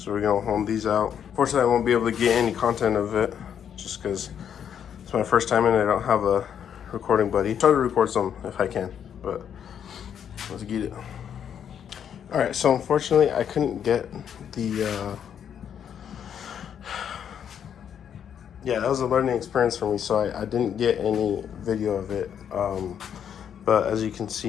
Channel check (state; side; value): quieter; right; 8.6 dB